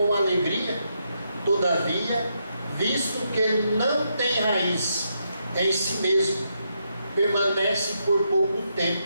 alegria, todavia, visto que não tem raiz em si mesmo, permanece por pouco tempo.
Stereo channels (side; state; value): both; inverted; correlation -0.80